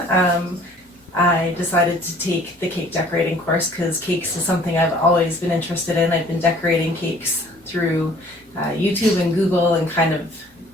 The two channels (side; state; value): both; normal; correlation 0.54